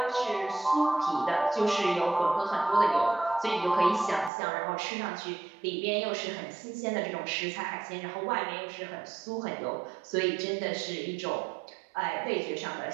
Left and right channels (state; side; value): drops out; left; at 4.3 s